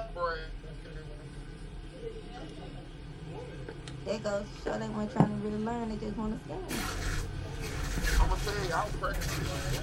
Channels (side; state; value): both; identical; correlation 1.00